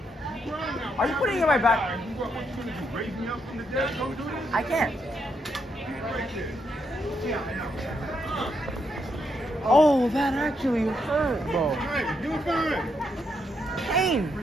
Are you putting it in my back? What you gonna do? Raise me up from the dead? Don't do this. I can't. Right there. Oh, that actually hurt, bro. Fine, you're fine. Pain.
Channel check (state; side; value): normal; both; correlation 0.78